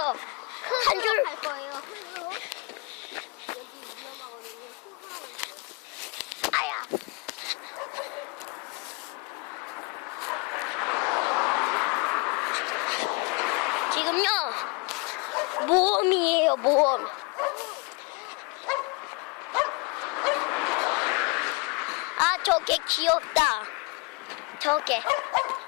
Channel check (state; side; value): quieter; right; 30.1 dB